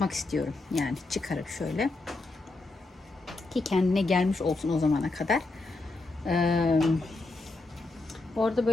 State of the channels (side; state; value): right; quieter; 3.2 dB